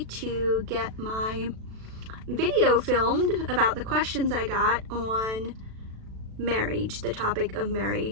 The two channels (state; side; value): late; left; 36 ms